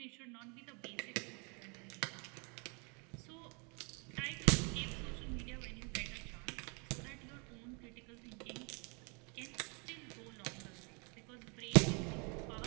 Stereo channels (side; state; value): left; quieter; 33.6 dB